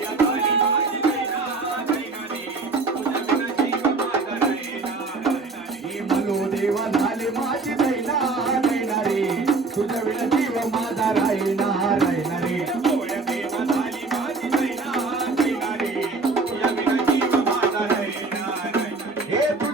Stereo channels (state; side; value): quieter; left; 3.9 dB